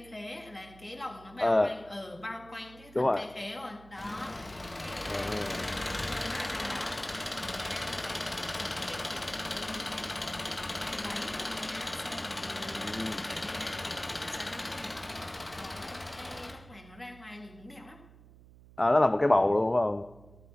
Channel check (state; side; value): noise; right; hum, 21 dB below the sound